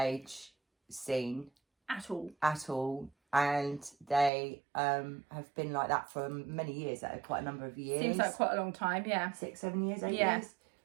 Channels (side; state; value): left; drops out; at 4.3 s